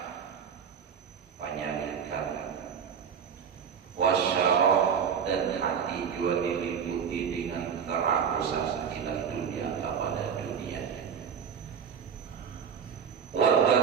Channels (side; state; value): left; quieter; 7.2 dB